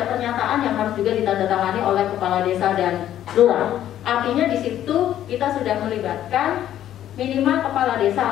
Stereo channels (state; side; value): quieter; right; 11.6 dB